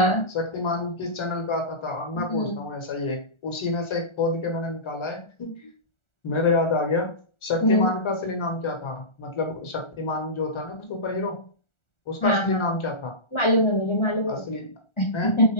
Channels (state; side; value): late; right; 1.4 ms